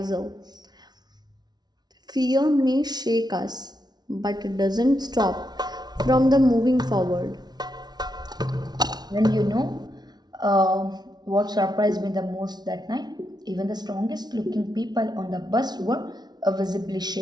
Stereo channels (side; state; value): left; late; 0.19 ms